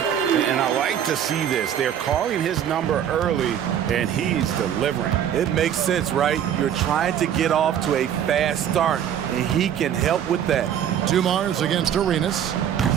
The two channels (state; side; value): quieter; left; 9.5 dB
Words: I like to see this. They're calling his number early, and he's delivering. It makes sense, right? You're trying to get off to a fast start, and he can help with that. Dumars against Arenas.